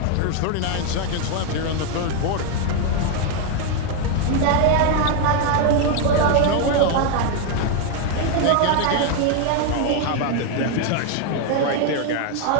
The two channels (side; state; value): both; different; correlation 0.01